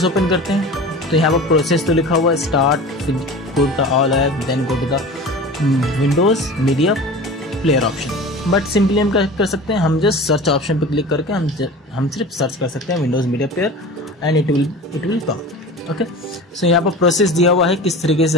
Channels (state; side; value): normal; both; correlation 0.36